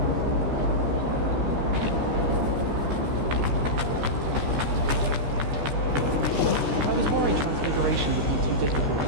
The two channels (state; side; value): late; left; 14 ms